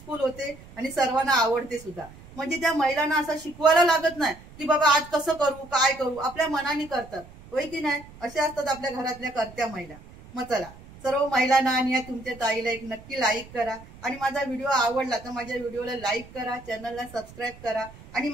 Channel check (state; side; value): noise; right; rumble, 20 dB below the sound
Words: होते आणि सर्वांना आवडते सुद्धा. म्हणजे त्या महिलांना असं शिकवायला लागत नाही की बाबा आज कसं करू काय करू. आपल्या मनाने करतात. होय की नाही. असे असतात आपल्या घरातल्या करत्या महिला. मग चला सर्व महिलांना आणि तुमच्या ताईला एक नक्की लाईक करा. आणि माझा व्हिडिओ आवडला तर माझ्या व्हिडिओला लाईक करा, चॅनलला सबस्क्राईब करा. आणि